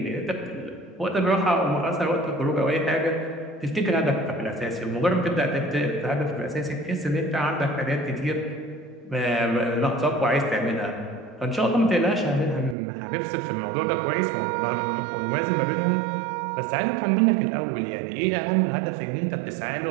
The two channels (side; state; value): left; drops out; at 12.8 s